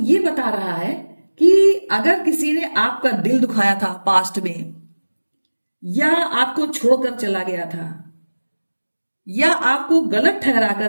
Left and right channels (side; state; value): both; inverted; correlation -1.00